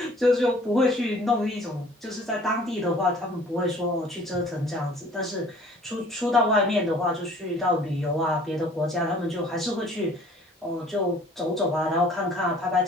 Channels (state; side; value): normal; both; correlation 0.52